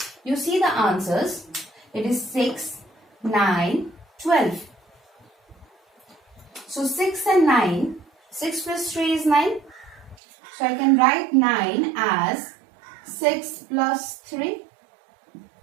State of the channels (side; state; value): left; drops out; at 10.2 s